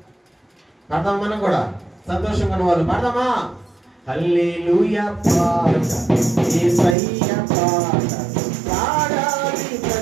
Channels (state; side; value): drops out; left; at 7.0 s